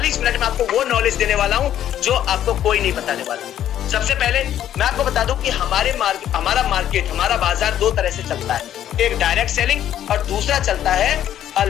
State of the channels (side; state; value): right; quieter; 11.1 dB